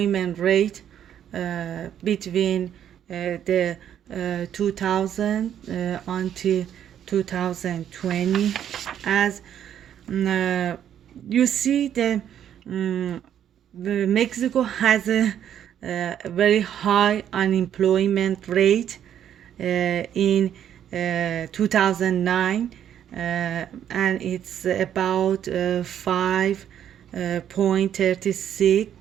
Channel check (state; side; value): quieter; left; 9.9 dB